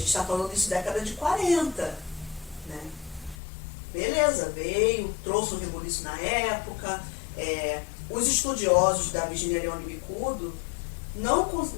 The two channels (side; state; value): right; drops out; at 3.4 s